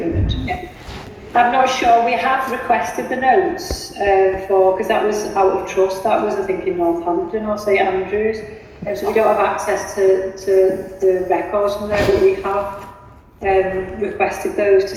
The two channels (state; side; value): identical; both; correlation 1.00